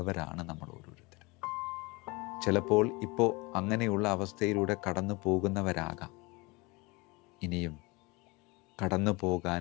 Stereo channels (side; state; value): right; quieter; 25.6 dB